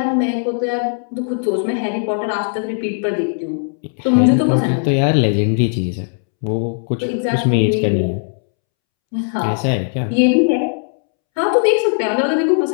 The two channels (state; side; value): silent; right; 67 dB below the other